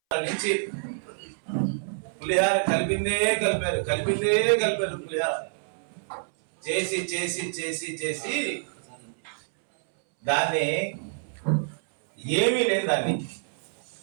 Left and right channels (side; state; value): left; silent; 60 dB below the other